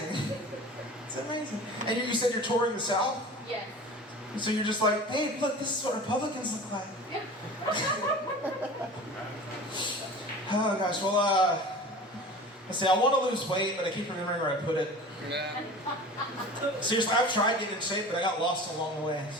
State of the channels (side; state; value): both; normal; correlation 0.38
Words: It's amazing. And you said you're touring the South? Yes. So you're just like, hey, look, this is what Republicans look like. Yeah. Oh gosh, well, let's see, I want to lose weight, but I keep remembering where I put it. Yeah. Seriously, I've tried getting in shape, but I got lost along the way.